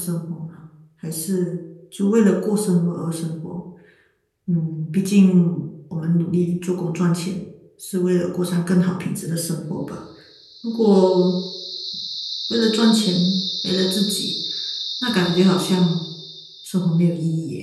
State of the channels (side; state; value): both; identical; correlation 1.00